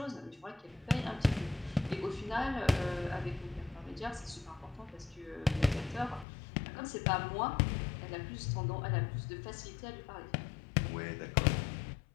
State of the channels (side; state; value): right; drops out; at 6.2 s